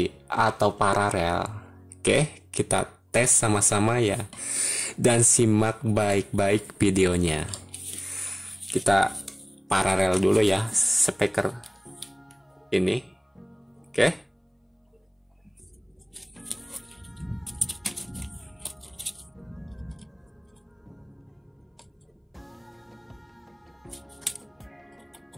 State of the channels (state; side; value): identical; both; correlation 1.00